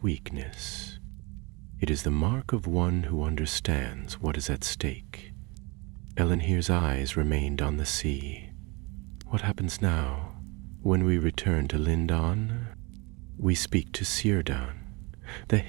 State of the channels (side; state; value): left; quieter; 27.1 dB